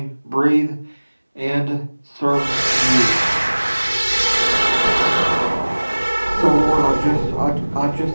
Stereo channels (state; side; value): inverted; both; correlation -1.00